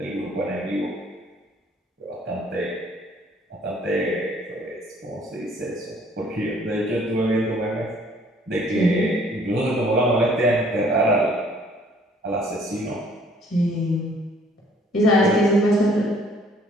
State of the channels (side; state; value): both; normal; correlation 0.59